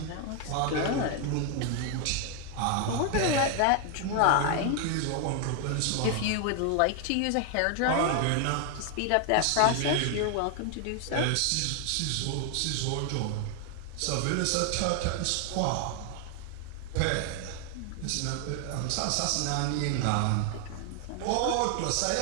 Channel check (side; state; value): both; different; correlation 0.00